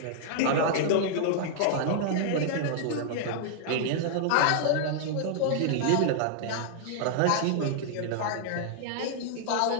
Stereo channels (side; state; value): both; different; correlation -0.01